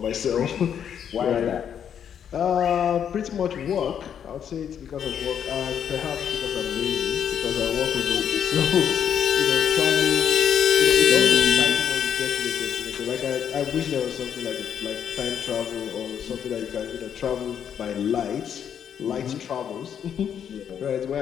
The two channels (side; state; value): right; quieter; 8.6 dB